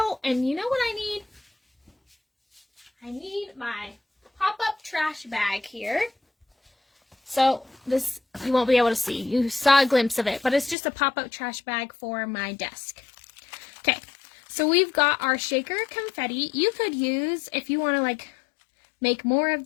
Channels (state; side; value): drops out; right; at 10.8 s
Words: and you know what I need? I need my pop-up trash bag here. So this, you won't be able to see. You saw a glimpse of it, but it's just a pop-up trash bag for my desk. Okay, so we've got our shaker confetti. You could use, if you want to make more of